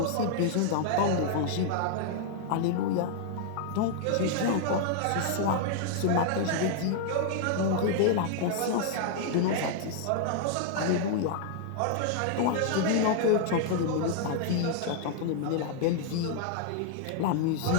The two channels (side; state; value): both; different; correlation 0.00